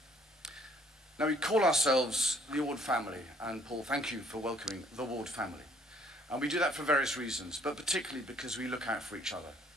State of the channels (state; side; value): normal; both; correlation 0.62